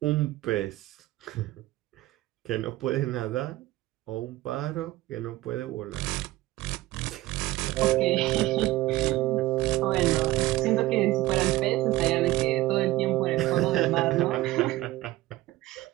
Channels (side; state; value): left; quieter; 17.0 dB